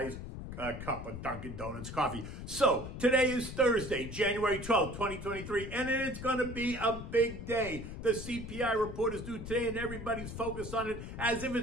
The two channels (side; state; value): left; noise; rumble, 9 dB below the sound